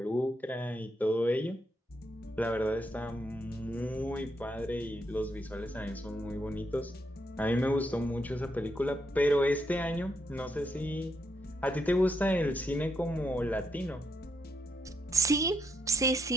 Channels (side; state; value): both; normal; correlation 0.78